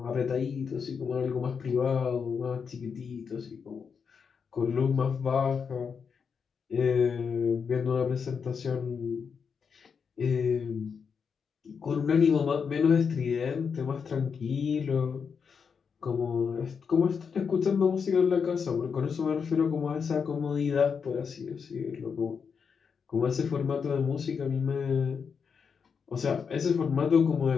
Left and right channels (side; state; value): right; quieter; 6.2 dB